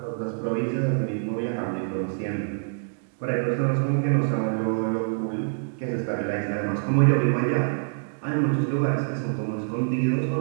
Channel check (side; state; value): left; silent; digital silence